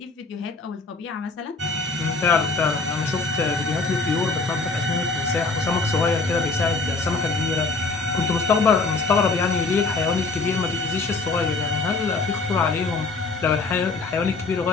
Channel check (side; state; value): right; quieter; 3.8 dB